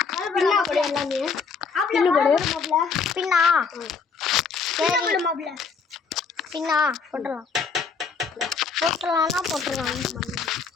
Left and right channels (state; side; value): quieter; right; 5.3 dB